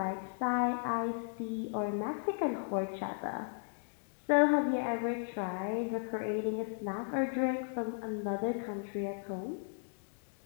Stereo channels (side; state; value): right; silent; digital silence